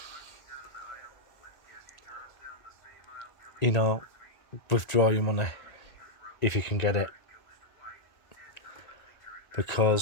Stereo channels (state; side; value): late; right; 1.9 ms